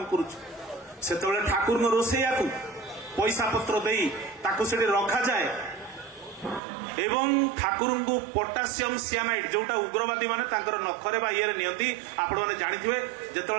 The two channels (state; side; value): drops out; left; at 6.6 s